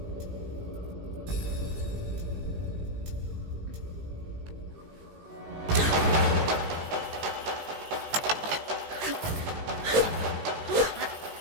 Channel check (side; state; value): left; late; 18 ms